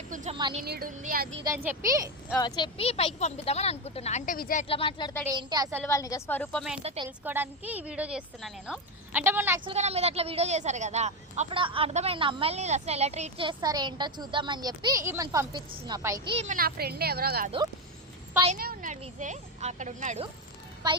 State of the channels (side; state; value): both; normal; correlation 0.10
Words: కొంచెం మనీ నీడ్ ఉంది, అది ఇది అని చెప్పి పైకి పంపిద్దామని అనుకుంటున్నా. అంటే విజయ్ ఎట్లా మాట్లాడతాడు ఏంటి, అసలు వాళ్ళ నిజ స్వరూపం ఏంటో తెలుసుకోవడానికి ఈ వీడియో చేస్తున్నా నేను. అంటే మొన్న యాక్చువల్గా నా మీద అట్లా వీడియో చేశారు కదా, అప్పుడు అర్థమైంది అమ్మాయిని అసలు ఎలా ట్రీట్ చేస్తారు ఏంటో చూద్దామని చెప్పి ఈమెను పంపించిన పైకి. ఈమె నా ఫ్రెండ్ ఎవరో కాదు, పైనే ఉన్నాడు విజయ్, అక్కడ ఉన్నాడు.